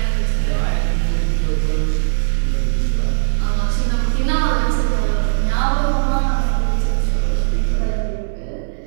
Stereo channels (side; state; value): left; silent; 67 dB below the other